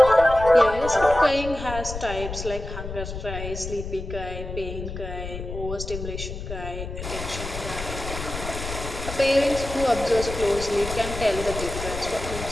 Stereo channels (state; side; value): noise; left; rumble, 8 dB below the sound